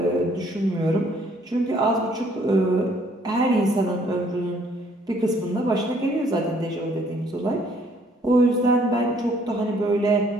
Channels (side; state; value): both; normal; correlation 0.63